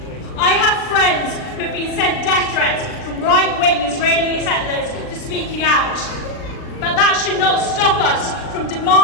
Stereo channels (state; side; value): late; right; 39 ms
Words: I have friends who have been sent death threats from right-wing Israeli settlers for speaking out. But that should not stop us from